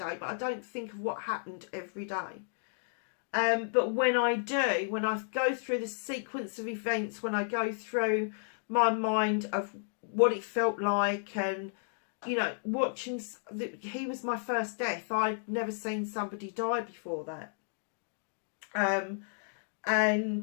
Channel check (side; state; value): right; silent; digital silence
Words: but I don't think of what happened every day. But when I do, when I go through the sequence of events, when I go through my mind of what it felt like, and, you know, watching, he was my first death. I'd never seen somebody die before that.